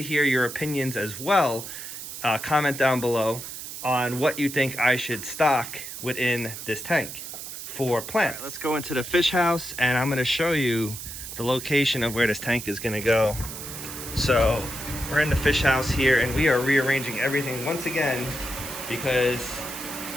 hear your opinions as well. Comment down below on what you think I should stock within this tank for plants. Right, let's go into the fish house, and I'm gonna show you the location of where this tank is gonna go. So we're in the fish house here, and we are rearranging everything once again because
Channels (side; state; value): right; noise; hiss, 9 dB below the sound